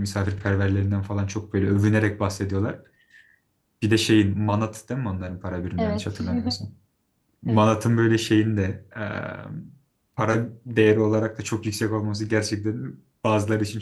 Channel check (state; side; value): identical; both; correlation 1.00